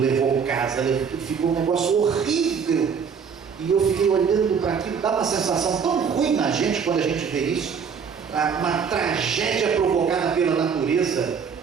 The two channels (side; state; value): left; quieter; 6.4 dB